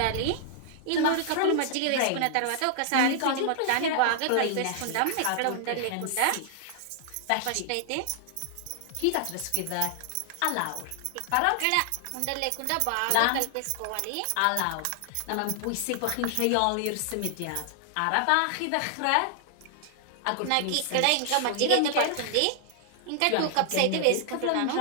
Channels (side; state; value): both; different; correlation 0.00